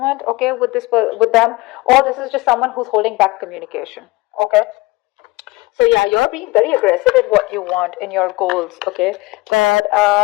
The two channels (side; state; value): right; quieter; 22.0 dB